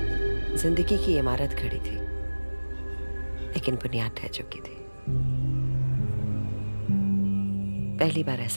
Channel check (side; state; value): both; inverted; correlation -1.00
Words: जिंदगी की इमारत खड़ी थी, लेकिन बुनियाद ढह चुकी थी। पहली बार